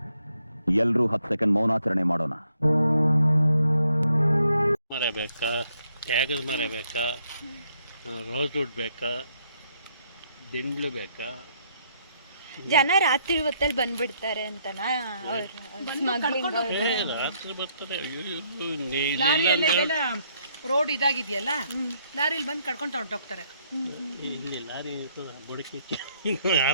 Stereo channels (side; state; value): both; inverted; correlation -0.72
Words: ಎಲ್ಲರೂ 10 ಸೆಕೆಂಡ್ ಮೌನಾಚರಣೆ ಮಾಡೋಣ. ಮರ ಬೇಕಾ, ತ್ಯಾಗದ ಮರ ಬೇಕಾ, ರೋಸ್ವುಡ್ ಬೇಕಾ, ದಿಂಡ್ಲು ಬೇಕಾ? ಜನ ರಾತ್ರಿ ಹೊತ್ತಲ್ಲಿ ಬಂದ್ಬಿಡ್ತಾರೆ ಅಂತನಾ ಸ್ಮಗ್ಲಿಂಗ್? ರಾತ್ರಿ ಬರ್ತಾರೆ. ರೋಡ್ ಇದಾಗಿದೆಯಲ್ಲ, ಲಾರಿಲಿ ಬಂದು ಕಡ್ಕೊಂಡು ಹೊರಟೋಗ್ತಾರೆ. ಇಲ್ಲಿ ಲಾರಿ ಬುಡಕಿ